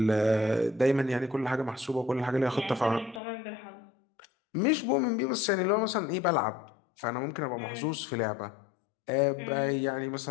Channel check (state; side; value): drops out; right; at 3.2 s